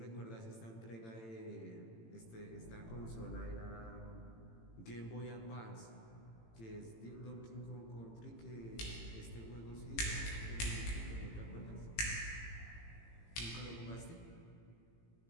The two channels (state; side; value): late; right; 18 ms